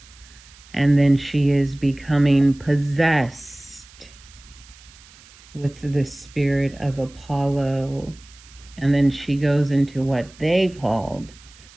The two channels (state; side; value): noise; right; hiss, 24 dB below the sound